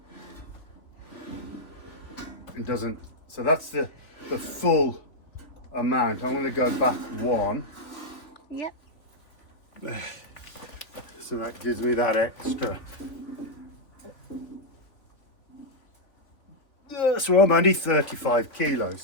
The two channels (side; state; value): right; late; 3.5 ms